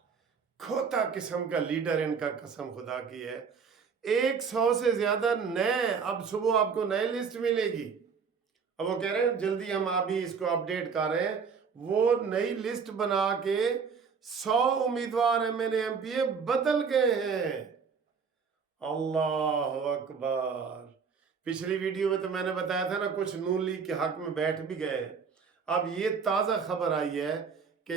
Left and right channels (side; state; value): left; quieter; 5.9 dB